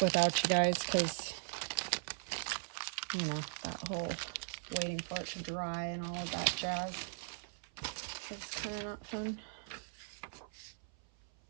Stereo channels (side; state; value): left; silent; 52 dB below the other